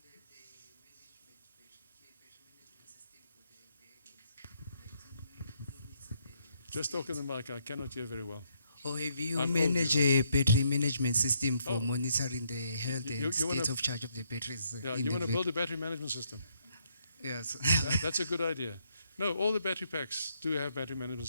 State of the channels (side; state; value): both; inverted; correlation -0.74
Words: a battery management system for the vehicles? Just talk in the mic, I cannot hear very well. Or have you I'm managed old, a battery management system for Oh. monitoring the health You and wanna- state of charge of the batteries? Yeah, in you the want to vehicle? build a battery management system? Yes. That's a good idea. No, all the battery packs do have battery management